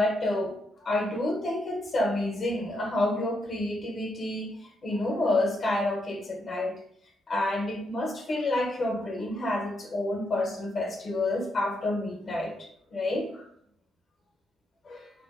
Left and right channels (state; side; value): normal; both; correlation 0.79